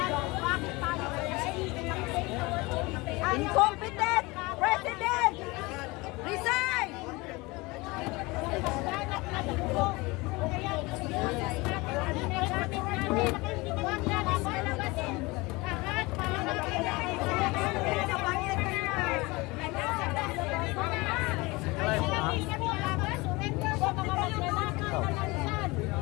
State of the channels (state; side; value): quieter; right; 23.6 dB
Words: Incompetent President! Resign!